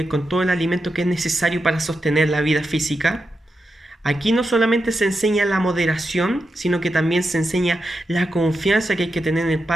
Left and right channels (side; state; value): both; normal; correlation 0.88